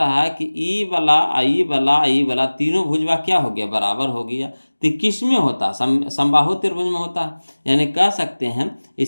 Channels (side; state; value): both; inverted; correlation -1.00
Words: है कि E वाला तीनों भुजवा क्या हो गया, बराबर हो गया। तो किस में होता, समबाहु त्रिभुज में होता है, यानी कह सकते हैं